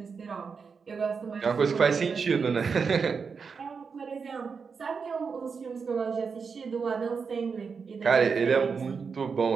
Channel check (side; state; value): left; quieter; 5.5 dB